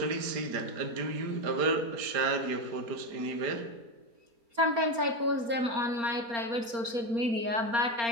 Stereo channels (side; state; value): left; late; 4.3 ms